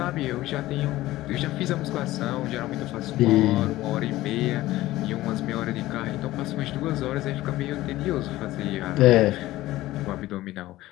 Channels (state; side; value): quieter; right; 16.5 dB